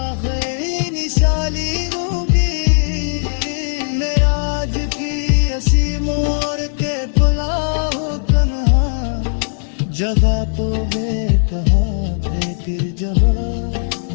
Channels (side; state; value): right; silent; digital silence